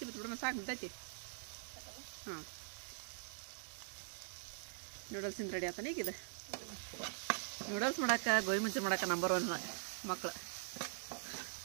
ಬಿಟ್ಬಿಡೋಣ, ಸಾಕು ಬಿಡ್ತೈತಿ. ಹಾಂ, ನೂಡಲ್ಸಿಂದ ರೆಡಿ ಆತಾನೆ ಈಗ ಇದು. ನೂಡಲ್ಸ್ ಮಾಡಕ್ಕೆ ಗೋಬಿ ಮಂಚೂರಿ ಮಾಡಕ್ಕೆ ನಂಬರ್ 1 ಮಕ್ಕಳು.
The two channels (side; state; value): left; silent; digital silence